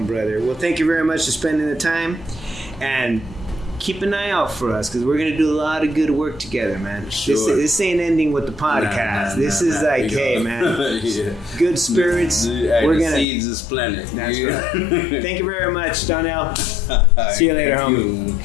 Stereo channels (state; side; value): drops out; right; at 13.2 s